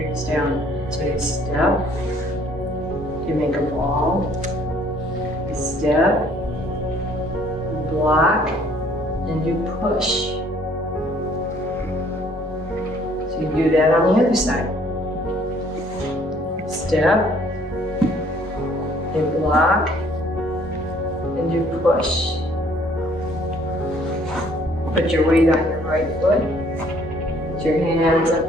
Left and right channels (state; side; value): normal; both; correlation 0.60